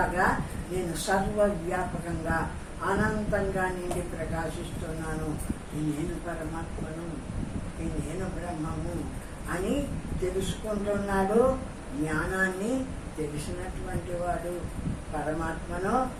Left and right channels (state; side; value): identical; both; correlation 1.00